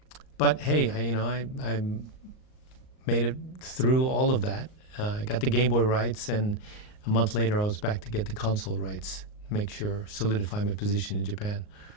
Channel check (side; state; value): right; late; 38 ms